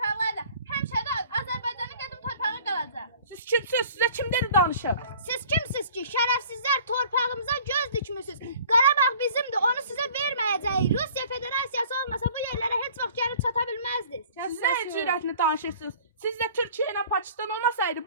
Həmişə də Azərbaycanın qədim torpağı qalacaq. Siz kimsiniz? Sizə kim dedi danışım? Siz kimsiniz ki, şərəfsizlər torpağımıza göz dikmişsiniz? Qarabağ bizimdir, onu sizə verməyəcəyik. Rusiya Federasiyası olmasa bu yerlərə heç vaxt gəlib çata bilməzdiniz. Siz nə cürətini danışırsınız? Siz də Türkiyə ilə Pakistan olmasaydı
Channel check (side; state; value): both; inverted; correlation -0.49